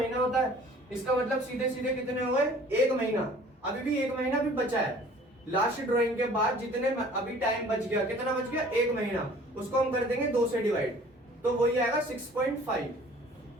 होता है, इसका मतलब सीधे सीधे कितने हो गए, 1 महीना। अभी भी 1 महीना भी बचा है, लास्ट ड्राइंग के बाद जितने अभी टाइम बच गया, कितना बच गया, 1 महीना, उसको हम कर देंगे 2 से डिवाइड, तो वही आएगा 6.5।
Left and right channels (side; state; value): both; normal; correlation 0.50